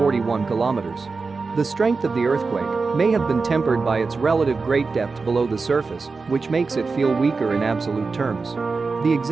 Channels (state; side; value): quieter; left; 4.3 dB